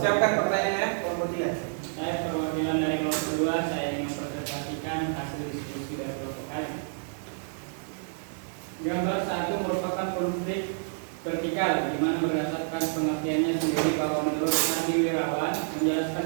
pertanyaannya, kelompok 3. Saya perwakilan dari kelompok 2. Saya ingin mempresentasikan hasil diskusi dari kelompok kami. Gambar 1 merupakan konflik vertikal, di mana berdasarkan pengertiannya sendiri bahwa menurut Nadi Wirawan menjelaskan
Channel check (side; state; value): left; silent; 59 dB below the other